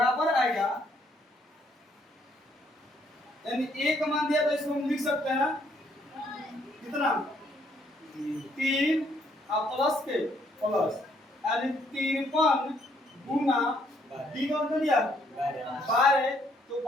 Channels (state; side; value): normal; both; correlation 0.69